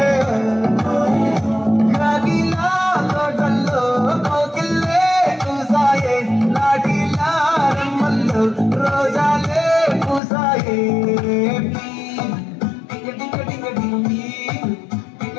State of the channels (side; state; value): right; drops out; at 10.2 s